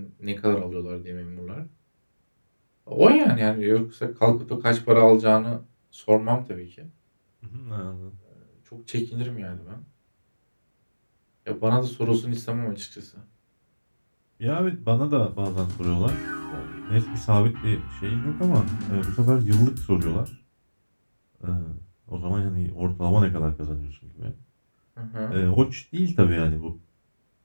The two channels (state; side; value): inverted; both; correlation -1.00